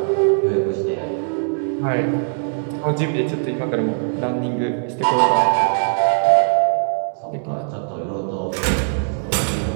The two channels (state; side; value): silent; left; digital silence